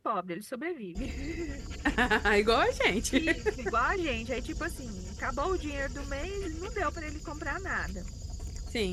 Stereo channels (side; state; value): both; identical; correlation 1.00